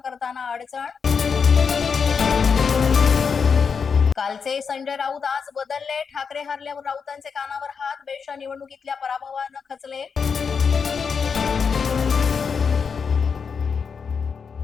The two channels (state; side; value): quieter; right; 6.0 dB